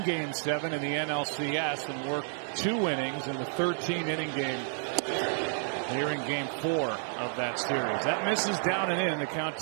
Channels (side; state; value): left; silent; 57 dB below the other